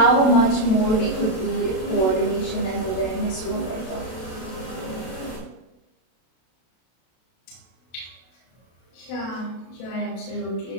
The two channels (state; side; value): late; right; 32 ms